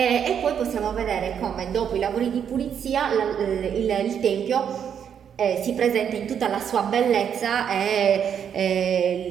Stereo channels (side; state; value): left; quieter; 8.2 dB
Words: poi possiamo vedere come dopo i lavori di pulizia il tempio si presenta in tutta la sua bellezza